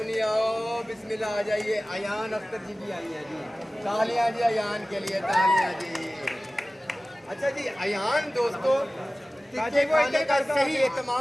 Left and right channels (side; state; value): both; normal; correlation 0.97